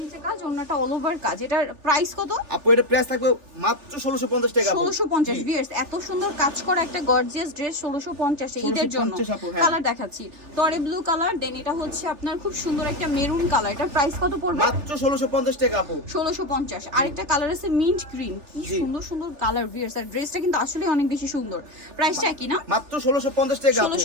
নিচে কাজ, ওন্নাটা অল ওভার কাজ। এটার প্রাইস কত আপু? এটা প্রাইস থাকবে মাত্র 1650 টাকা আপু। 1650। ভিউয়ার্স, এত সুন্দর কাজ করা একটা গর্জিয়াস ড্রেস 1650 এ ঈদের জন্য। কালার দেখাচ্ছি, টরে ব্লু কালার, দেন এটা হচ্ছে আপনার খুব সুন্দর একটা মেরুন কালার। এটার প্রাইস কত পড়বে? মাত্র 1650 টাকা আপু। 1650। আরেকটা কালার আছে মিন্ট গ্রিন, কি সুন্দর সুন্দর কালার। ভিউয়ার্স, আর ড্রেসটা কিন্তু আসলে অনেক বেশি সুন্দর। প্রাইসটা কি না? মাত্র 1650 টাকা আপু।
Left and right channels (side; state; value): left; late; 3.4 ms